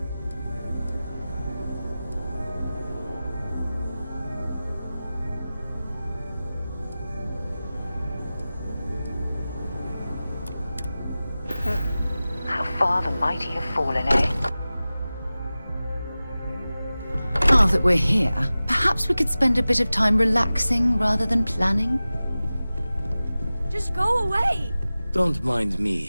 How far the mighty have fallen, eh? Now that we're here, perhaps we could spend a bit of time relaxing rather than planning? Just go away! Don't mind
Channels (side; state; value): both; inverted; correlation -0.96